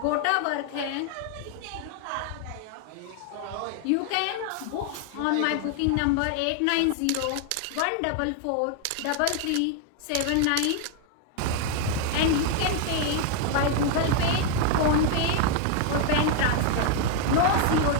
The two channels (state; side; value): different; both; correlation 0.01